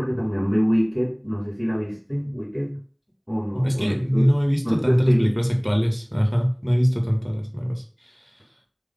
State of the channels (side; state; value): both; identical; correlation 1.00